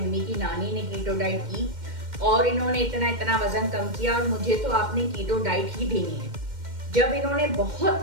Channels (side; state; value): left; late; 2.1 ms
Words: की नानी ने कीटो डाइट की और इन्होंने इतना इतना वजन कम किया और मुझे तो आपने कीटो डाइट ही देनी है। जब इन्होंने